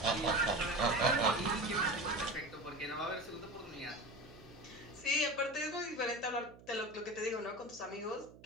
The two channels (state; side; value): noise; right; hum, 21 dB below the sound